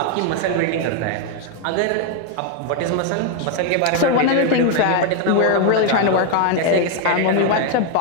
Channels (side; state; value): both; different; correlation 0.01